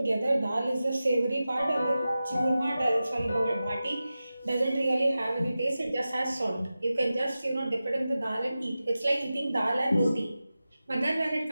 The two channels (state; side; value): inverted; both; correlation -0.94